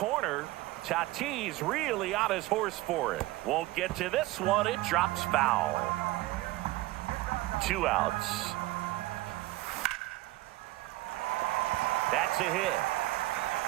Tatis really on his horse for it. Won't get to this one. It drops foul. 2 outs. That's a hit.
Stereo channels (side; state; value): left; quieter; 18.6 dB